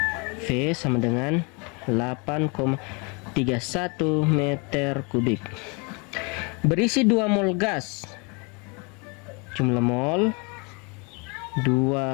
V sama dengan 8,31 meter kubik. Berisi 2 mol gas. Jumlah mol 2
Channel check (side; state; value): right; quieter; 31.3 dB